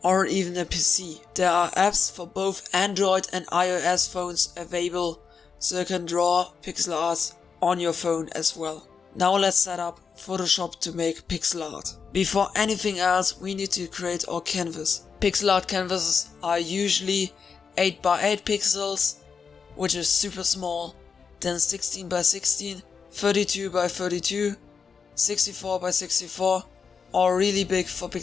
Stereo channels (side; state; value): right; quieter; 5.8 dB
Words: or even a PC. There are apps for both Android and iOS phones available, so you can draw pixel art on your phone as well. Now let's set up Photoshop to make pixel art. Before anything else, we need to create our canvas. Pixel art canvases are usually 8x8 pixels, which is super small, then 16x16, 32x32, 64x64, or really big for